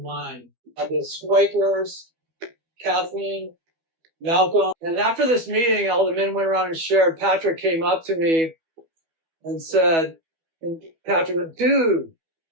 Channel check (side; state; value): left; late; 12 ms